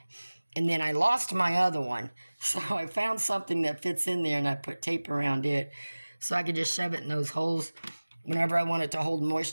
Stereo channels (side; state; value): both; inverted; correlation -1.00